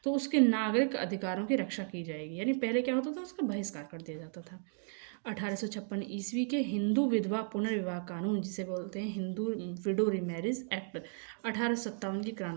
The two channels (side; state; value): left; silent; 55 dB below the other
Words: तो उसके नागरिक अधिकारों की रक्षा की जाएगी। यानी पहले क्या होता था, उसका बहिष्कार कर दिया जाता था। 1856 ईस्वी के हिंदू विधवा पुनर्विवाह कानून, जिसे बोलते हैं हिंदू विडो रीमैरिज एक्ट, 1857 की